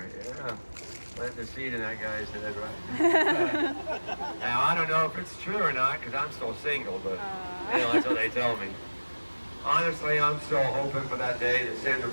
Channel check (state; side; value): inverted; both; correlation -1.00